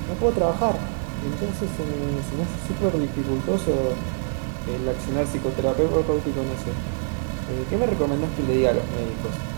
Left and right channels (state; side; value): silent; left; 57 dB below the other